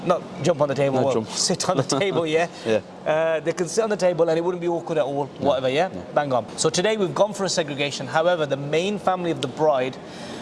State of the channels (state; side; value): identical; both; correlation 1.00